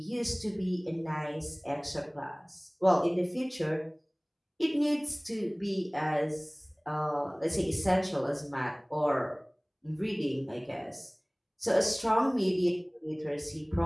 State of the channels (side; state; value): both; identical; correlation 1.00